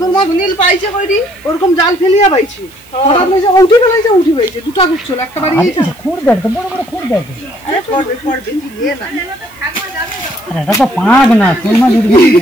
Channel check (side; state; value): right; noise; hiss, 26 dB below the sound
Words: মাছ নীল পাইছে কইরি, ওরকম জাল ফেলিয়া পাইছে, হঠাৎ লইছে উঠি ফেলাইছে, উঠি পাইছে দুটা গুছল, একটা বাড়ি গিয়েছে, খুঁড় দেখ তো, বড় বড় খুঁড় দেখ, আরে পড়বে পড়বে, তুই নিয়ে না, আরে এটা তো পাগ না, শোল মাছ উঠবে,